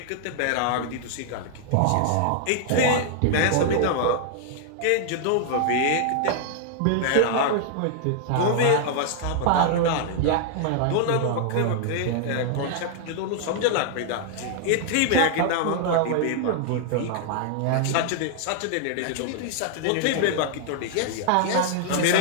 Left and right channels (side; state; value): both; different; correlation -0.01